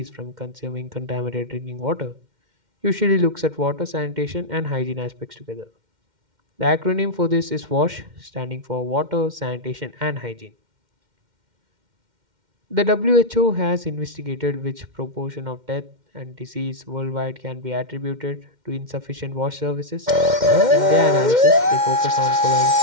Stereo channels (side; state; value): left; late; 2.1 ms